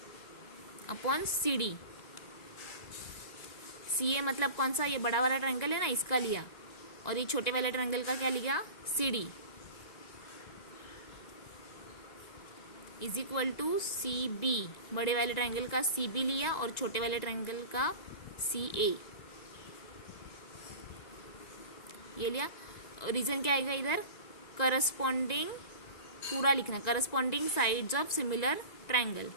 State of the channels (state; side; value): late; right; 1.9 ms